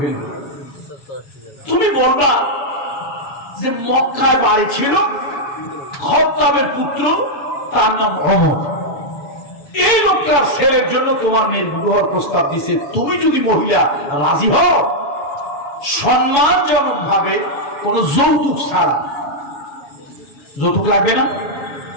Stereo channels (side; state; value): right; late; 7.2 ms